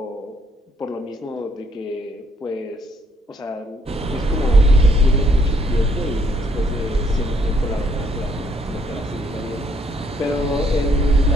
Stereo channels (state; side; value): normal; both; correlation 0.69